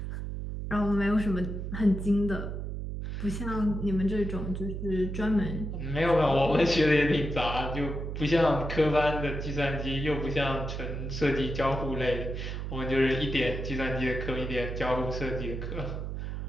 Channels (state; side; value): noise; right; hum, 5 dB below the sound